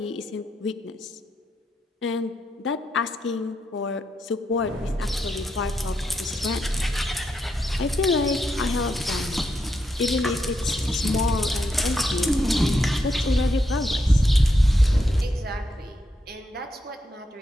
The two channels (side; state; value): both; normal; correlation 0.82